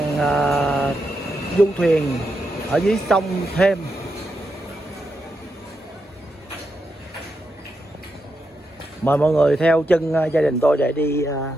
du thuyền ở dưới sông Thames. Mời mọi người theo chân gia đình tôi để đi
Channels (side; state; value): both; normal; correlation 0.84